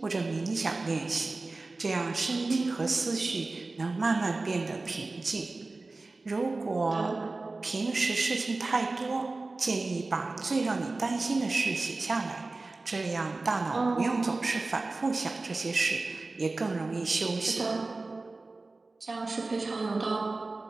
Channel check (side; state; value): left; quieter; 3.4 dB